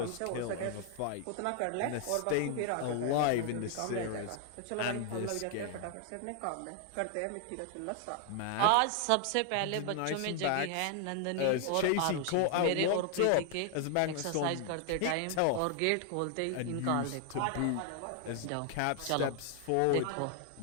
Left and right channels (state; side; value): different; both; correlation 0.00